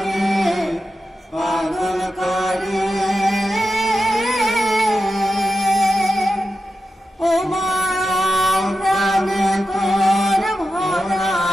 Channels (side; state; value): both; normal; correlation 0.90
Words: পাগল করে ও মা প্রাণে তোর ভরা